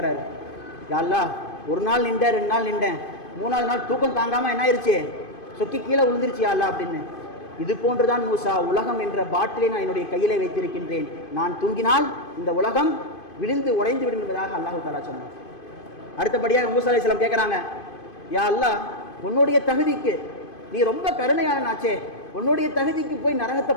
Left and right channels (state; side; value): late; right; 2.5 ms